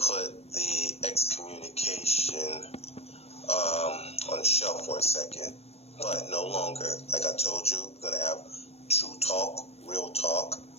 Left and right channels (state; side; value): late; right; 0.30 ms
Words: the excommunication on the shelf for a second, but no longer. Like I told you, we're going to have true talk, real talk.